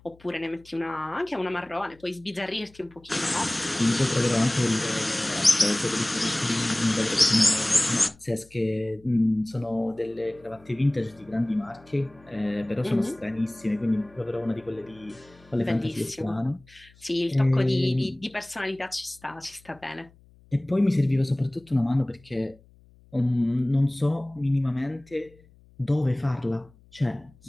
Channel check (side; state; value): left; noise; hum, 27 dB below the sound